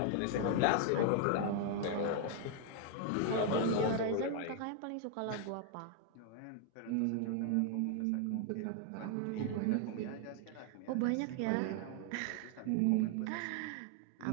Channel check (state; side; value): different; both; correlation 0.00